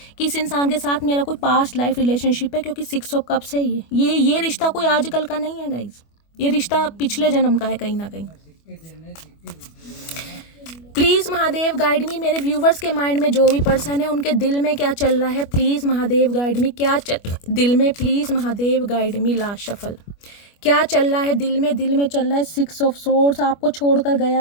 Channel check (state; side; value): late; right; 25 ms